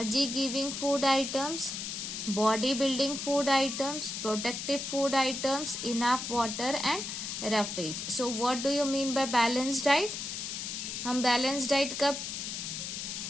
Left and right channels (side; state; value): left; noise; hiss, 5 dB below the sound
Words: food items, body-building food items, protective food items, enough water and roughage. So what do you mean by balanced diet? हम balanced diet कब